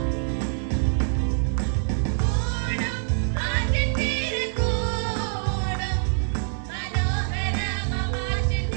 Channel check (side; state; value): left; silent; digital silence